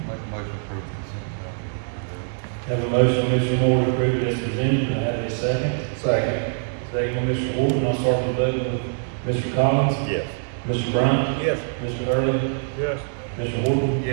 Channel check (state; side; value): silent; left; 63 dB below the other